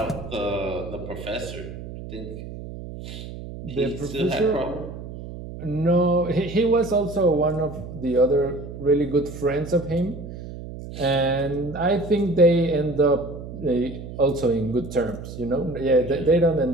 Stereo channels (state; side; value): noise; right; hum, 11 dB below the sound